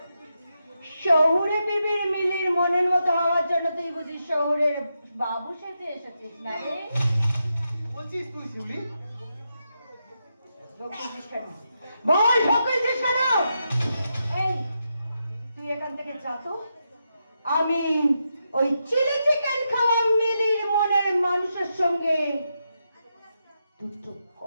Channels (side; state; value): both; inverted; correlation -0.85